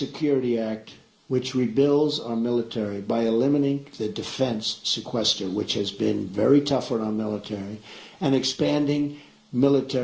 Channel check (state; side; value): identical; both; correlation 1.00